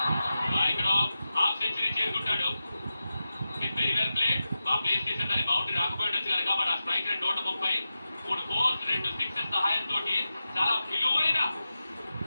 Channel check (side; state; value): both; inverted; correlation -0.93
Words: ఇక్కడ హాఫ్ సెంచరీ చేరుకుంటాడు. Very well played. బాగా ప్లేస్ చేశాడు. దాని బౌండరీ రాకపోయిండొచ్చు కనుక మన స్ట్రైక్ రేట్ 130. 3 ఫోర్స్ 2 సిక్సెస్ సహాయంతో చాలా విలువైన